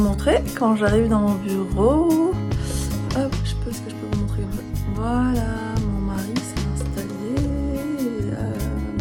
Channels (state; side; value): identical; both; correlation 1.00